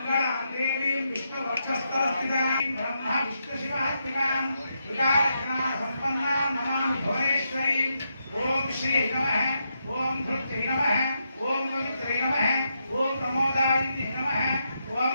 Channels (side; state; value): both; inverted; correlation -0.82